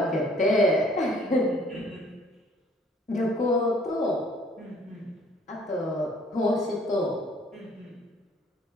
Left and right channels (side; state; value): both; normal; correlation 0.58